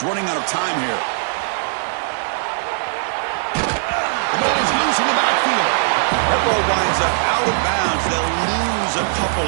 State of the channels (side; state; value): left; silent; 63 dB below the other